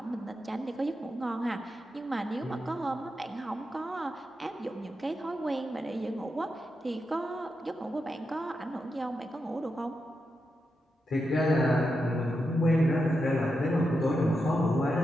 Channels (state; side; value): normal; both; correlation 0.87